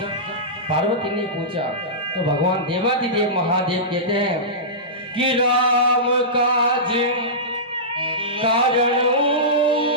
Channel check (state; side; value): normal; both; correlation -0.17